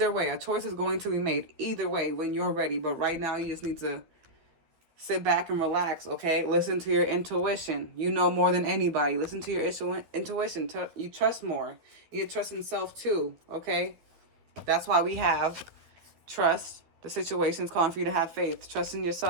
way, a choice is going to be made. Either way, when you're ready. But right now, you just need to sit back and relax. Okay, listen to your intuition. You know more than anybody. Listen to your intuition. You trust more. You trust in self too. Okay, that's why we have trust. The situation is calling for you to have faith. Trust in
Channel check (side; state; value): left; late; 12 ms